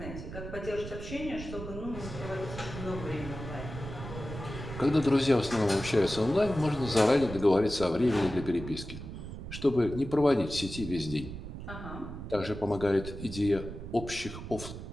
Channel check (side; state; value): right; noise; rumble, 10 dB below the sound